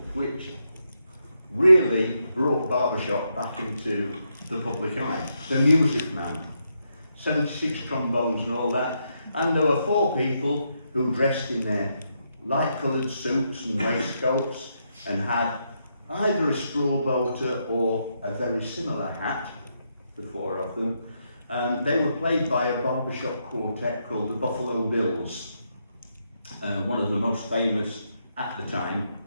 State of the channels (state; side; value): inverted; both; correlation -0.80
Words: which really brought barbershop back into the public eye. The Music Man, 76 trombones and all that. And there were 4 people who dressed in their light-coloured suits and waistcoats and had either a straw boater or a very similar hat, the 4 of them. They were played by a barbershop quartet called the Buffalo Bills, one of the most famous at the time.